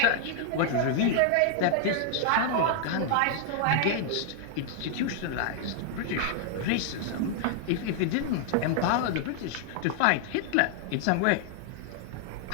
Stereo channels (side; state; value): both; different; correlation 0.00